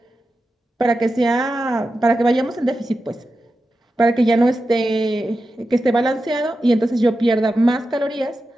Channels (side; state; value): both; normal; correlation 0.91